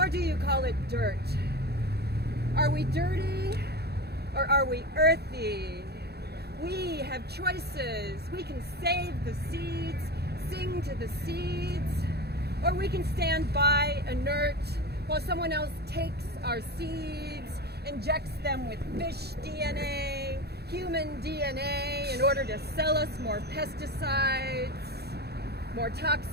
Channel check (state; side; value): late; left; 0.47 ms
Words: do you call it dirt? Are we dirty or are we earthy? We have choices. We can save the seeds, sing to the seeds, or we can stand by inert while someone else takes our seeds, injects them with fish DNA, human DNA in order to sell us more pesticides, more